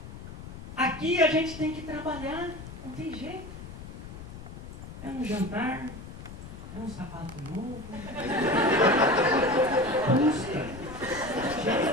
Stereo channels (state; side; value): noise; left; rumble, 12 dB below the sound